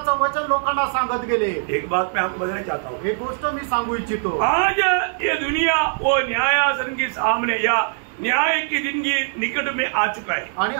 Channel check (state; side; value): silent; left; digital silence